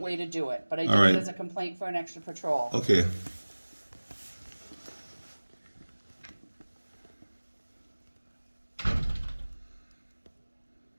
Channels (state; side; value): inverted; both; correlation -1.00